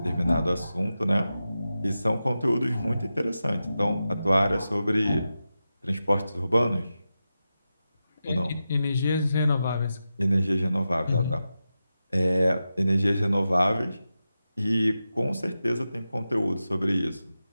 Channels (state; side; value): inverted; both; correlation -0.91